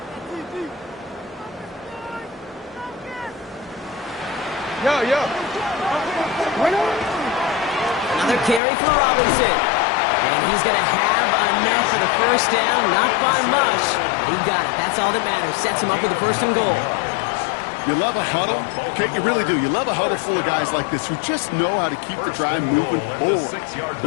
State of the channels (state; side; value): drops out; right; at 8.6 s